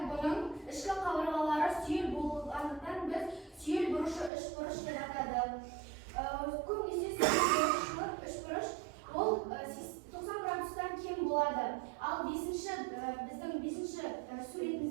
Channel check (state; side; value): drops out; left; at 4.3 s